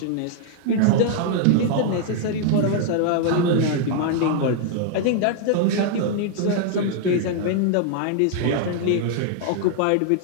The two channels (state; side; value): different; both; correlation -0.01